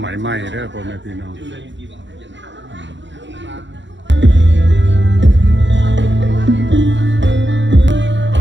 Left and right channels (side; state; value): left; late; 0.54 ms